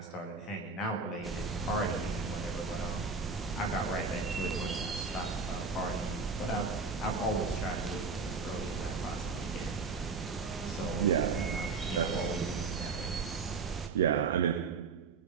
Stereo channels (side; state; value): left; quieter; 4.4 dB